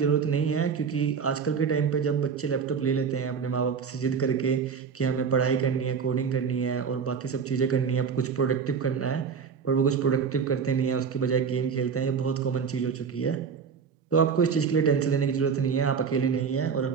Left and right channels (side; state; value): left; quieter; 6.3 dB